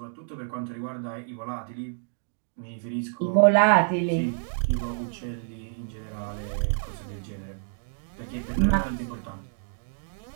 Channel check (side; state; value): left; silent; digital silence